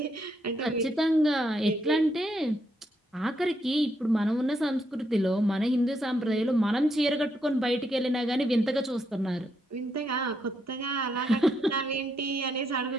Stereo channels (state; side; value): normal; both; correlation 0.78